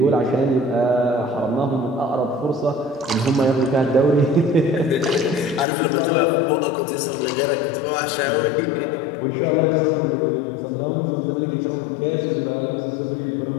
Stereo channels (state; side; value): drops out; right; at 5.7 s